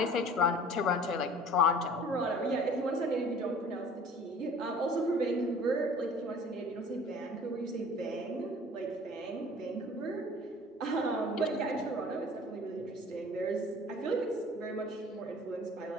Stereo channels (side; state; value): both; normal; correlation 0.47